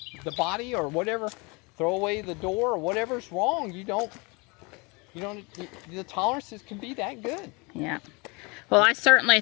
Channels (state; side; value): quieter; right; 28.4 dB